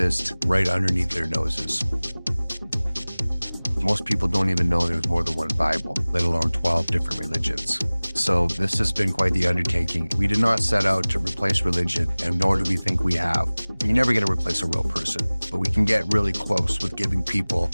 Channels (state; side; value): inverted; both; correlation -1.00